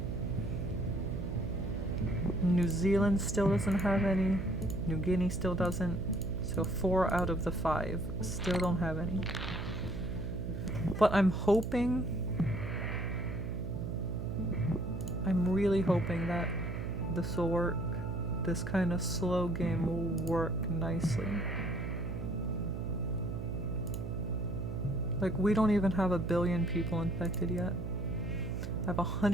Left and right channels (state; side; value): noise; right; hum, 5 dB below the sound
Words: New Zealand still doesn't have any. New Guinea still doesn't. So 4 out of the 5 still don't have any. But I'm hoping... I'm really hoping that this will work. This kind of slow game will work nicely. Like, we don't even have 1 billion people infected yet. I have